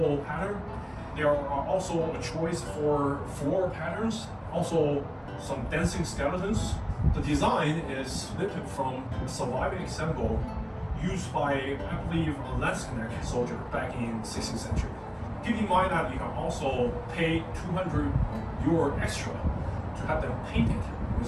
pattern. There are also a choice for floral patterns, also some dancing skeletons. The design is lifted from a surviving example used by, I believe, a Landsknecht soldier back in 16th century. Keep in mind that you can also pay 200 euro extra to have them painted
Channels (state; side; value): identical; both; correlation 1.00